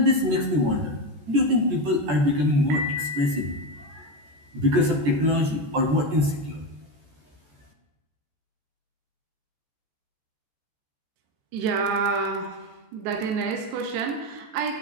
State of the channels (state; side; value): late; left; 14 ms